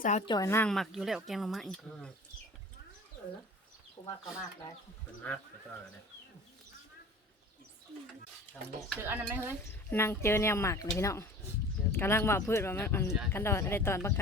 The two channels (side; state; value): both; normal; correlation 0.42